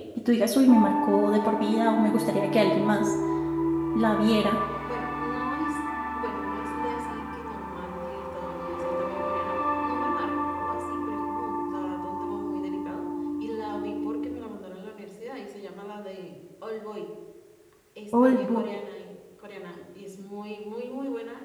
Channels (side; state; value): both; identical; correlation 1.00